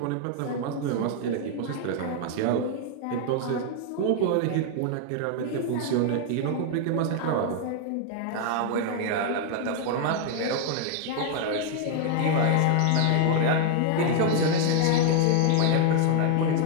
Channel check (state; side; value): different; both; correlation 0.00